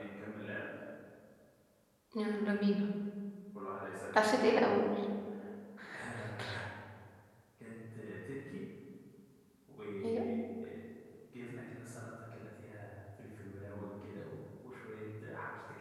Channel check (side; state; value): both; identical; correlation 1.00